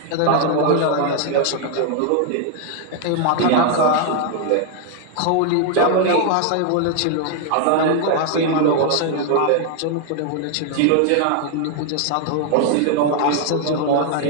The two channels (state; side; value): different; both; correlation 0.00